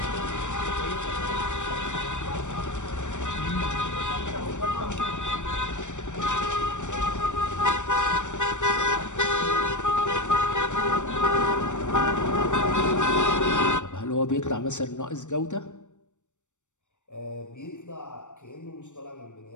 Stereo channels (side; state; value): right; late; 0.85 ms